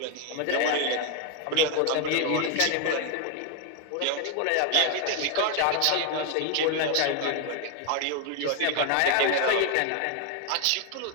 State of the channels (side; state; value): both; different; correlation 0.01